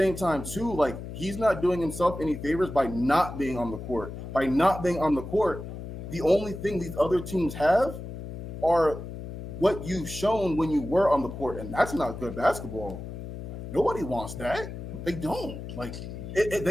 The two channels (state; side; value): noise; left; hum, 9 dB below the sound